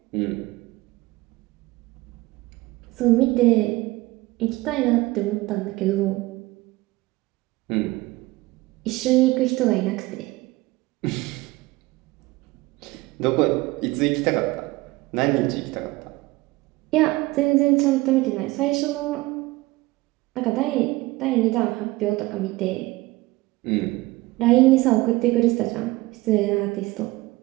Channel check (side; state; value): left; quieter; 20.3 dB